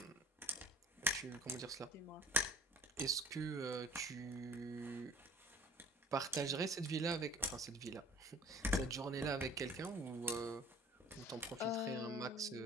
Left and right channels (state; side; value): normal; both; correlation 0.49